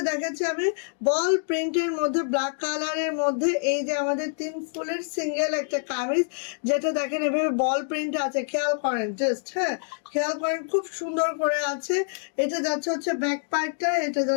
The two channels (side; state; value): right; silent; digital silence